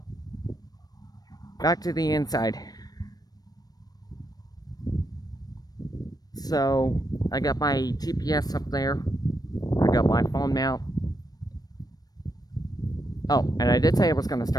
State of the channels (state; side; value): late; right; 0.19 ms